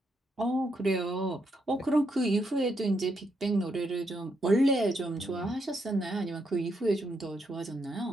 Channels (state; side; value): normal; both; correlation 0.78